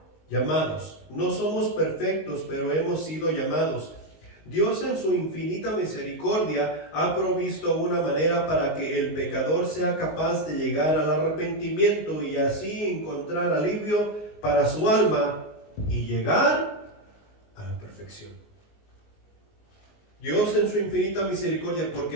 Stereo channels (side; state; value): right; late; 19 ms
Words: llamados. No somos perfectos, pero hemos sido llamados. Dios en su infinita misericordia ha provisto una manera para que el pecador sea capaz de llegar al arrepentimiento y así encontrar alivio para su alma y llegar a la perfección. Dios en su infinita misericordia,